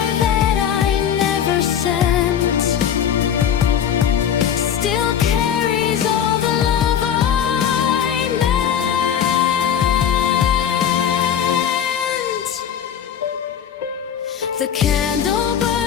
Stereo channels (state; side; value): quieter; right; 8.9 dB